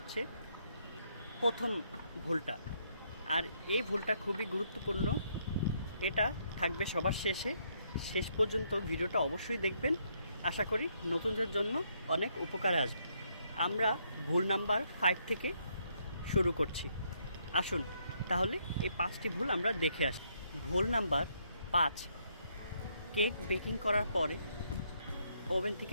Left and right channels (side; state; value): both; inverted; correlation -0.73